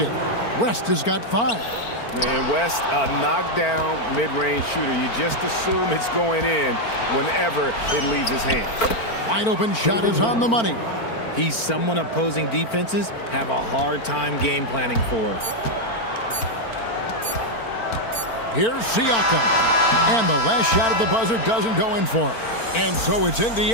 West has got 5. And West, a knockdown mid-range shooter. You just assume it's going in whenever it leaves his hands. Wide open shot is on the money. He's someone opposing defenses have a hard time game planning for. Here's Siakam. And the last shot at the buzzer doesn't go in for him. And so it's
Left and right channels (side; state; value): right; late; 4.4 ms